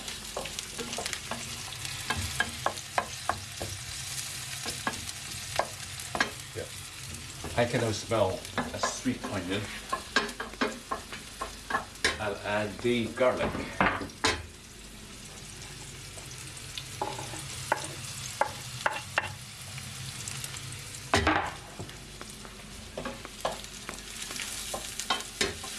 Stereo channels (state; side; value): identical; both; correlation 1.00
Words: I can now smell a sweet onion. I'll add the garlic.